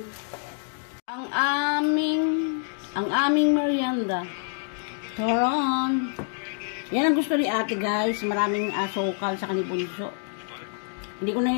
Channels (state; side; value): silent; right; 57 dB below the other